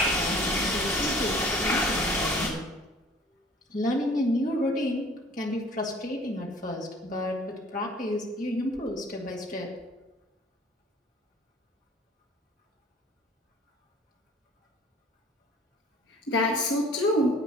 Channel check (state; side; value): normal; both; correlation 0.50